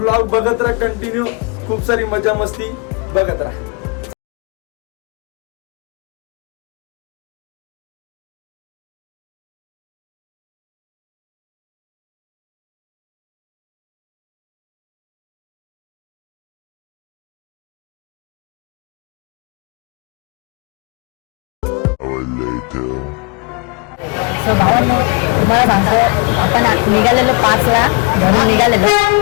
बघत राहा कंटिन्यू. खूप सारी मजा मस्ती बघत राहा. सो भावांनो, तुम्हाला सांगतो, आपण निघालेलो 5ला घरून निघालेलो.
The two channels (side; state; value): right; quieter; 30.4 dB